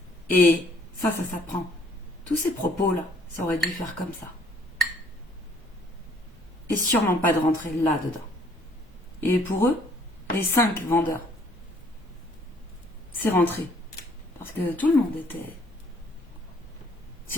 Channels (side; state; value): both; normal; correlation 0.62